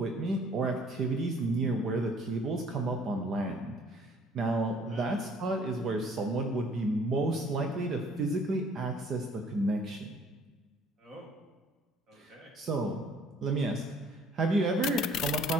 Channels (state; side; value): normal; both; correlation 0.57